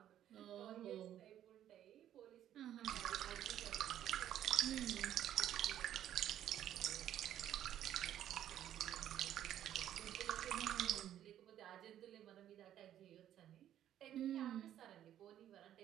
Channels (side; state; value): left; quieter; 11.3 dB